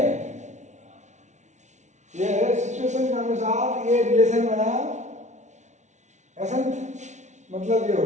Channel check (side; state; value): left; late; 0.34 ms